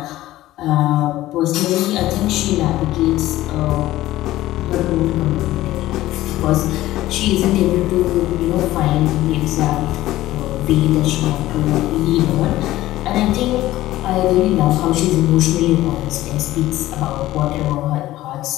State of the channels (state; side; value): quieter; right; 15.7 dB